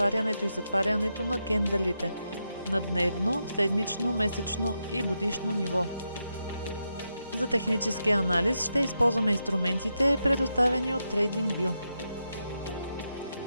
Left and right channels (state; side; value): inverted; both; correlation -0.85